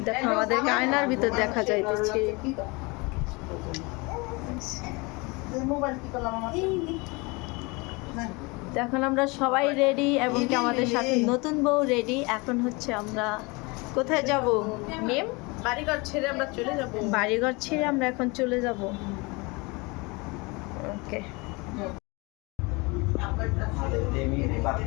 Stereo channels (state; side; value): quieter; right; 26.8 dB